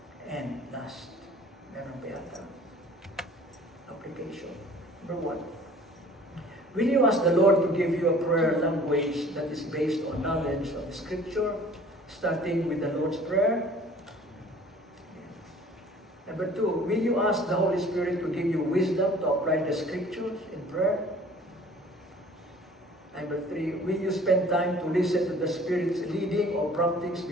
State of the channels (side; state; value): both; normal; correlation 0.50